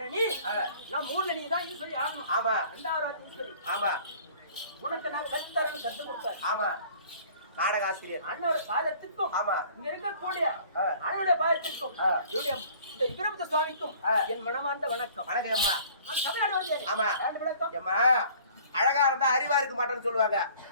ஆ, நான் மூணு நீ தான் ஈஸ்வரி ஆகணும். ஆமா. 2வது ஈஸ்வரி ஆமா. உனக்கு நான் கற்றுத்தரேன்னு கற்றுக் கொடுத்தாரு. ஆமா. நாடக ஆசிரியர் அண்ணோட பாதத்திற்கும் ஆமா. இங்க இருக்கக்கூடிய ஆ. அண்ணனுடைய பாதத்திற்கும் ஆ. என்னுடைய இந்த வீரபத்ர சுவாமிக்கும் ஆ. என் மனமார்ந்த வணக்கம். வணக்கம் அம்மா. நான் தமிழ்நாடு வந்தேன். ஆமா. விளக்கம் அம்மா அழகா இருந்தா அறிவா இருக்க மாட்டேன்னு சொல்லுவாங்க.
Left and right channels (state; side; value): inverted; both; correlation -0.51